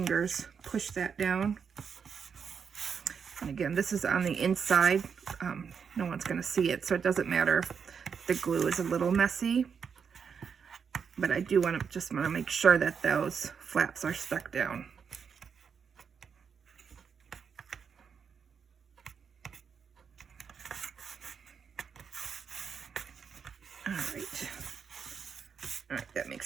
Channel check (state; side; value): quieter; left; 6.6 dB